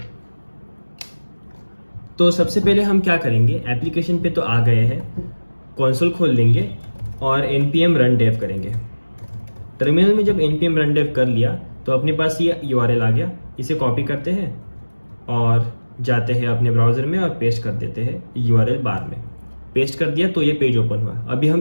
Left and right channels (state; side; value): inverted; both; correlation -1.00